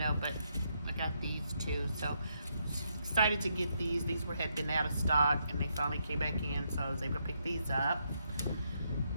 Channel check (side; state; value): both; inverted; correlation -0.78